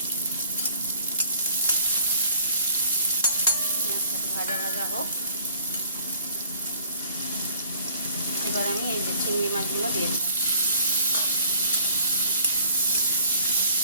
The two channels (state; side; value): inverted; both; correlation -0.56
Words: পেঁয়াজটাকে ভাজা ভাজা হোক। এবার আমি এই যে চিংড়ি মাছগুলো দিয়ে দিলাম।